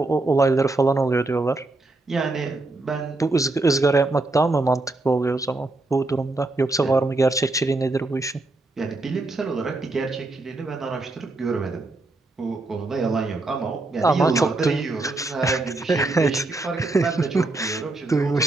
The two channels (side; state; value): left; quieter; 3.0 dB